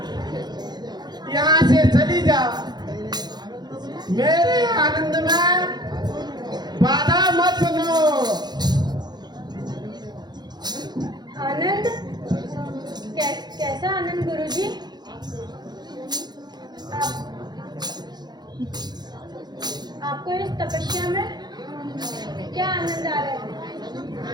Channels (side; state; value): left; late; 0.20 ms